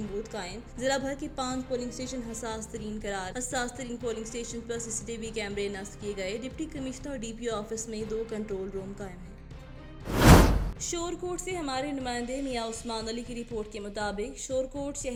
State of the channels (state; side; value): identical; both; correlation 1.00